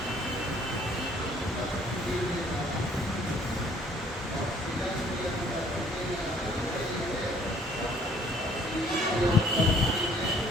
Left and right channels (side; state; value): both; normal; correlation 0.60